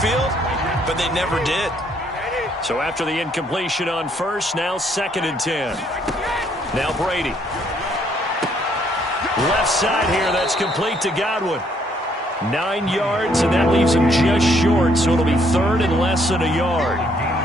but they never did. So after the incompletion on first, now 2nd and 10. Now Brady. Left side here, that's complete to Godwin. 9 yards, and that leaves him just short, so it'll be 3rd and less than a yard.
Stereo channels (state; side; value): normal; both; correlation 0.68